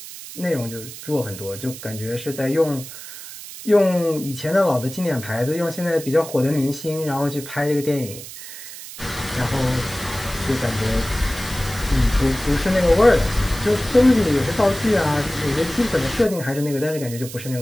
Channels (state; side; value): noise; right; hiss, 13 dB below the sound